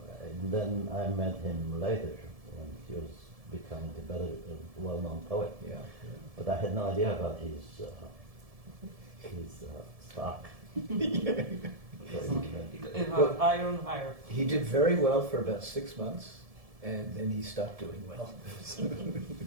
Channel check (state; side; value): late; left; 1.7 ms